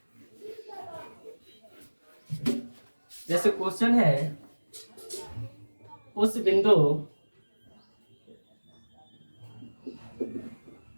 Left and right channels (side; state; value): both; inverted; correlation -1.00